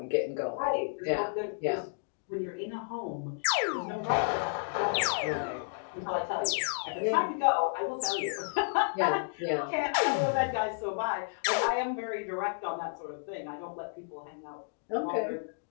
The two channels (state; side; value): silent; right; digital silence